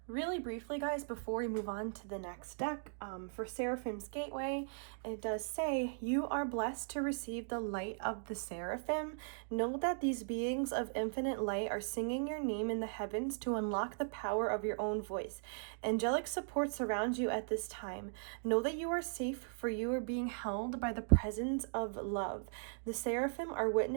really briefly, guys, before we move on to the next deck, for Seraphim's Gateway, it does say, you are blessed to receive the light of the Seraphim. Know that these beings of infinite light are singing your name in the heavens to unlock the power of your own voice. Angelic support surrounds you at this time. Know that you are safe, for you are being held by the presence of love. The Seraphim are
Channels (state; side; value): silent; left; digital silence